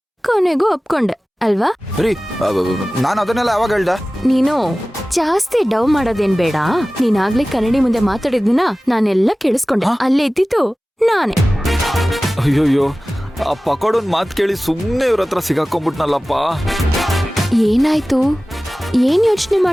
ಕೊನೆಗೂ ಒಪ್ಕೊಂಡೆ ಅಲ್ವಾ? ನಾನು ಅದನ್ನೆಲ್ಲ ಯಾವಾಗ ಹೇಳ್ದ? ನೀನು ಜಾಸ್ತಿ ಡವ್ ಮಾಡೋದೇನ್ ಬೇಡ. ನೀನಾಗ್ಲೇ ಕನ್ನಡಿ ಮುಂದೆ ಮಾತಾಡಿದ್ನ ನಾನೆಲ್ಲ ಕೇಳಿಸ್ಕೊಂಡೆ. ಅಲ್ಲೇ ಇದ್ದಿತ್ತು ನಾನೇ. ಅಯ್ಯೋಯ್ಯೋ, ಆ ಪಕೋಡನ್ ಮಾತು ಕೇಳಿ ಸುಮ್ಮನೆ ಇವ್ರ ಹತ್ರ ಸಿಗಾಕೊಂಡ್ಬಿಟ್ನಲ್ಲಪ್ಪ. ಏನಾಯ್ತು? ಏನ್ ಯೋಚನೆ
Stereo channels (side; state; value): both; normal; correlation 0.97